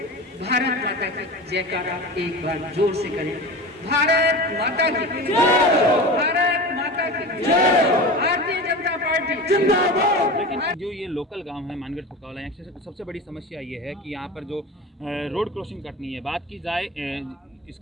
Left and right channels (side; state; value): both; normal; correlation 0.30